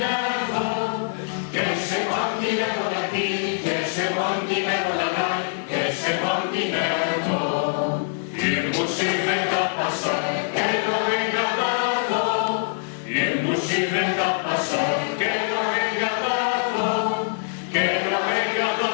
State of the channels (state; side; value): silent; right; digital silence